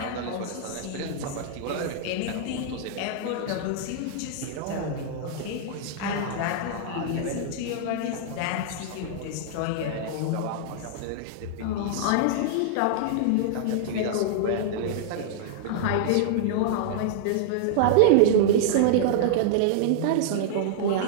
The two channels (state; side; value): different; both; correlation -0.01